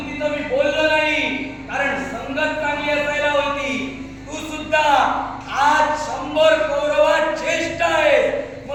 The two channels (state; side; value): identical; both; correlation 1.00